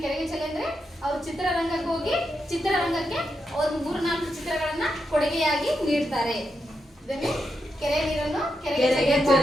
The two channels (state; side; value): normal; both; correlation 0.85